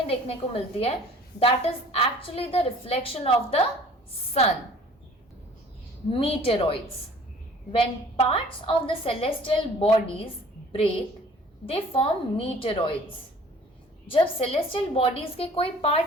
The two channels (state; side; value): normal; both; correlation 0.51